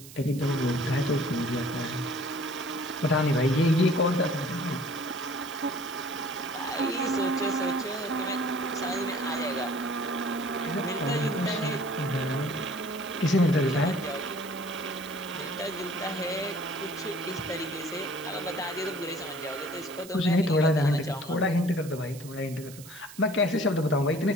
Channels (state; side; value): noise; right; hiss, 17 dB below the sound